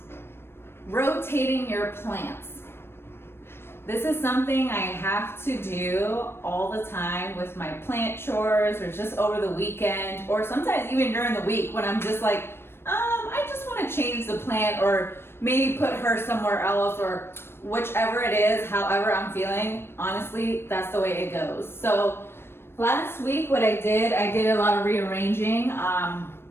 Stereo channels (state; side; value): late; right; 0.12 ms